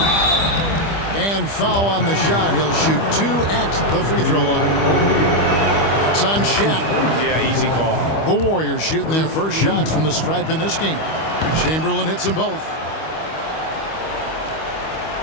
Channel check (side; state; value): right; late; 25 ms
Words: And foul on the shot. He'll shoot 2 at the free throw line. That's on Shaq. Yeah, easy call. The Warriors shooting their first shots from the stripe in this game. Chamberlain hits them both.